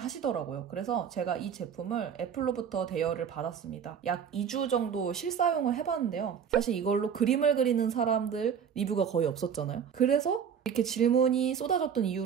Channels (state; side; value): quieter; left; 7.7 dB